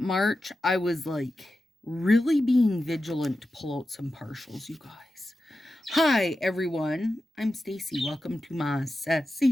I was like really being vigilant to pull out some partials, you guys. Hi, everyone. I'm Stacy. Welcome to my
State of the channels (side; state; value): both; normal; correlation 0.91